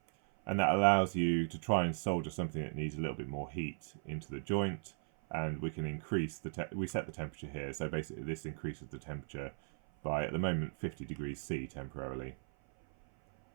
and that allows you to try and solder something that needs a little bit more heat into the joint. And we can increase we set the temperature here, so basically this increases the temperature by, at the moment, 50 degrees C temporarily.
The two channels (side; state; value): left; silent; 53 dB below the other